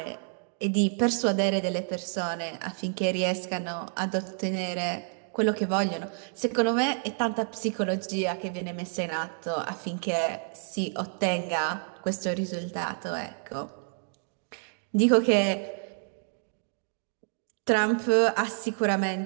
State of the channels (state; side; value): silent; left; 59 dB below the other